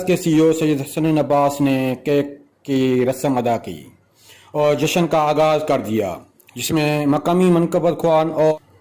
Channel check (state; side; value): identical; both; correlation 1.00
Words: کے سی او سید حسن عباس نے کیک کی رسم ادا کی اور جشن کا آغاز کر دیا، جس میں مقامی منقبت خوان